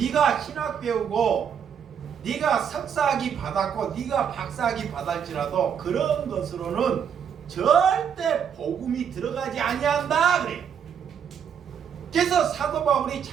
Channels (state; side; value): quieter; left; 7.8 dB